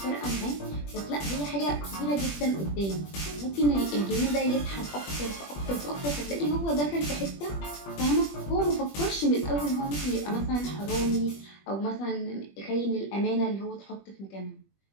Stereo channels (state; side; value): late; right; 21 ms